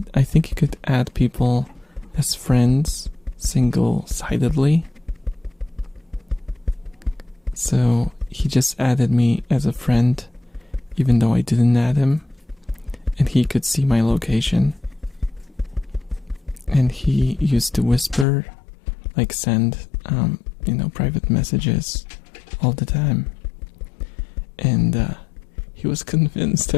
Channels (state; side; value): drops out; right; at 18.2 s